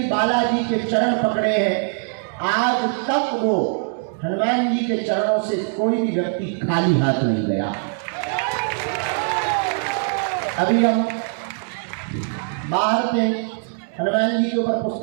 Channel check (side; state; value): left; silent; 58 dB below the other